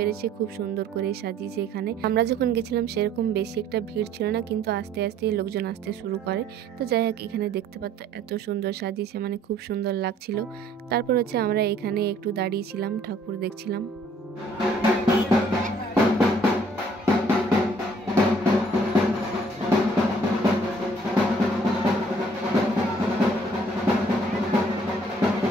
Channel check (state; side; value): normal; both; correlation 0.59